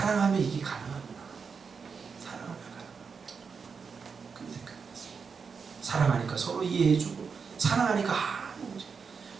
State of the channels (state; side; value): quieter; left; 5.6 dB